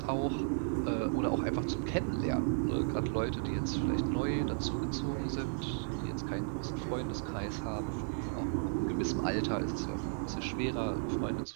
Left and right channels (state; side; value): silent; left; 55 dB below the other